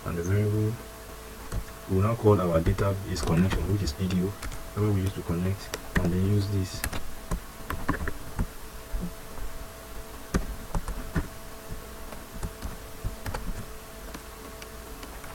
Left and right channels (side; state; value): both; identical; correlation 1.00